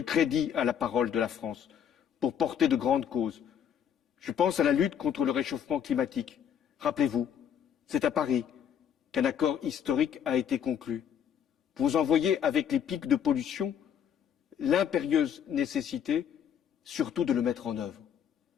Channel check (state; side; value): quieter; right; 8.7 dB